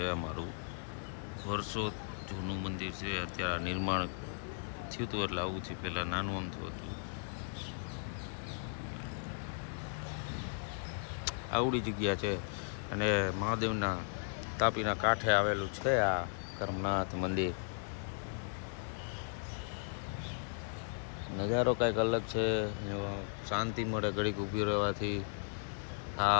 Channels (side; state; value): right; silent; 53 dB below the other